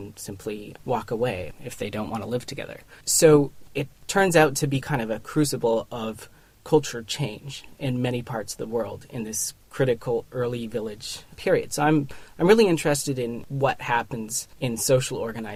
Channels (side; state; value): both; identical; correlation 1.00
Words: simply walk away if they don't want to live together. So it turns out to be kind of a crucible of culture change in many parts of the world in this critical early village period. So I'm really interested in what happens in social